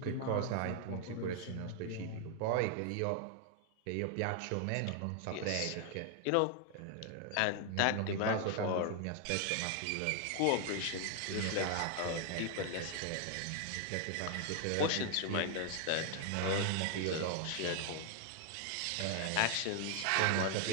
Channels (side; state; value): both; different; correlation 0.00